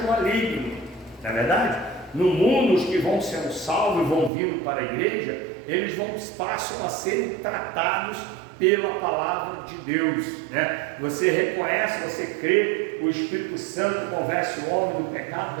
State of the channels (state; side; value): drops out; left; at 4.3 s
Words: maligno, não é verdade? No mundo, os que vão sendo salvos e vão vindo para a igreja, eles passam a serem tratados pela palavra de Deus, né? Você reconhece, você crê, o Espírito Santo convence o homem do pecado,